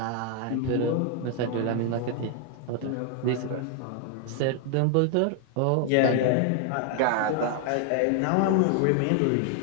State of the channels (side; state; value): both; different; correlation 0.00